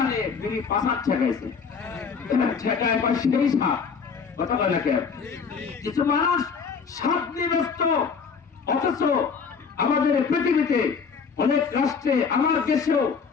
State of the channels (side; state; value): right; quieter; 5.8 dB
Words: বিড়ি পাশার ঠেকাইছে, ঠেকায় পর সেই সাপ কথা বলে কেন? কিছু মানুষ সাপ নিয়ে ব্যস্ত, অথচ আমাদের পৃথিবীতে অনেক রাষ্ট্রে, আমার দেশেও